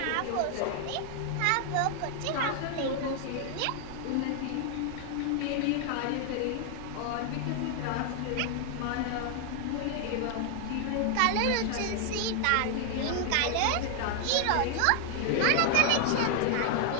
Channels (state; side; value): different; both; correlation 0.00